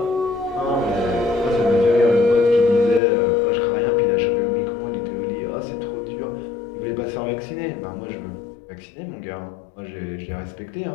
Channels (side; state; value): right; drops out; at 3.0 s